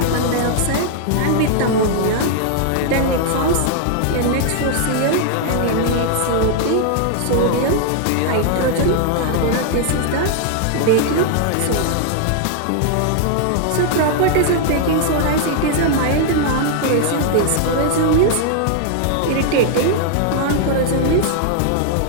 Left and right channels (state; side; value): different; both; correlation 0.00